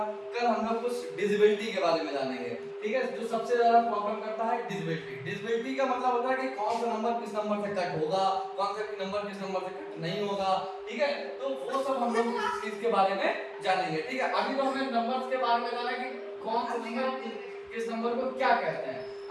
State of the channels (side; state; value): both; identical; correlation 1.00